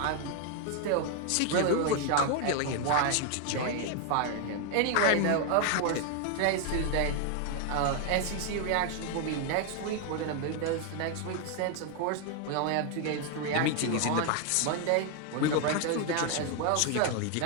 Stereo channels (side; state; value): both; different; correlation 0.01